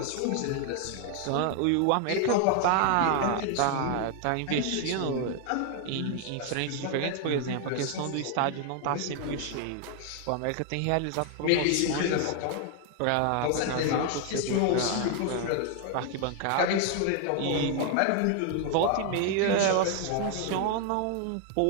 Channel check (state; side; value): different; both; correlation 0.00